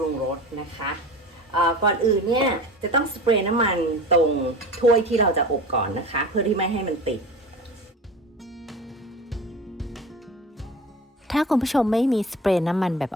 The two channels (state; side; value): normal; both; correlation 0.35